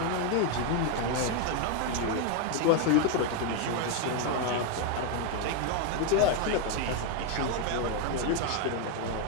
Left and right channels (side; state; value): both; different; correlation 0.01